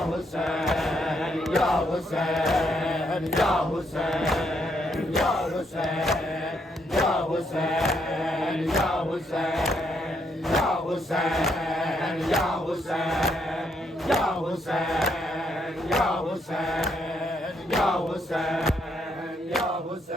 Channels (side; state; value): both; normal; correlation 0.74